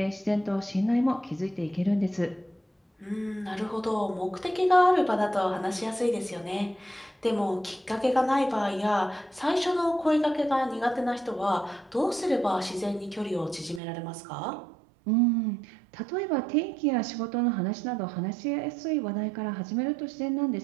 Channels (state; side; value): drops out; left; at 13.8 s